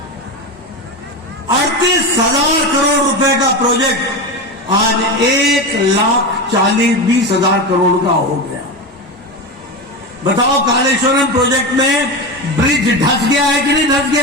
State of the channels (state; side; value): normal; both; correlation 0.20